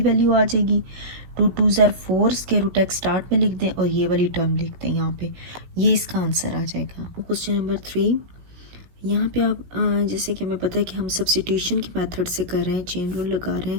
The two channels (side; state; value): left; late; 17 ms